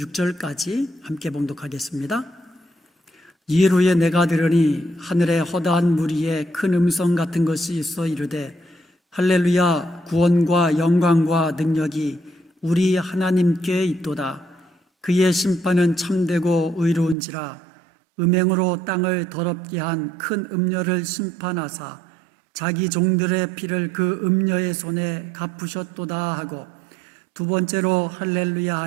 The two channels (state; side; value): drops out; left; at 17.2 s